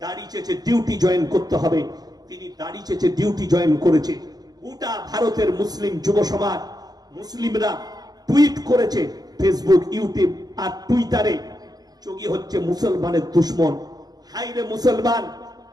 দাড়ি চেয়েছে ডিউটি জয়েন করতে হবে, তিনি দাড়ি চেয়েছে ডিউটি জয়েন করেছে। গোটা ভারতের মুসলিম যুব সমাজ, মুসলিমরা টুইট করেছে ফেসবুক, ইউটিউব আর টুইটারে, যোগী হচ্ছে মুসলমানের দুশ্মন। হাইরে মুসলমান,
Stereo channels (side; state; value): left; late; 0.19 ms